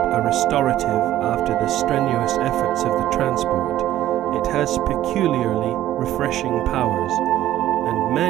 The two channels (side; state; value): left; quieter; 13.4 dB